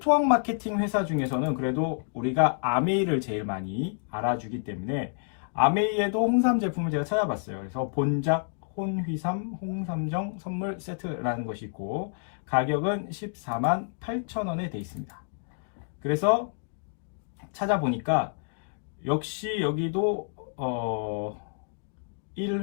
마케팅 회사 중에서는 그래도 우리가 아메이를 제일 많이 알아주기 때문에 아메이에도 홍삼 제품을 제가 찾아봤어요. 그래서 본작 혼휘삼 홍삼정 선물 세트라는 것이 있고, 가격은 148,000원에 되어 있습니다. 그래서 찾아보니까 역시 여기도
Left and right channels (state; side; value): silent; right; digital silence